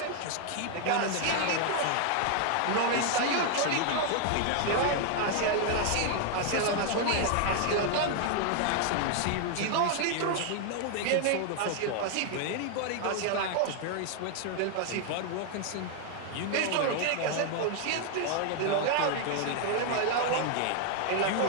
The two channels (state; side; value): different; both; correlation 0.00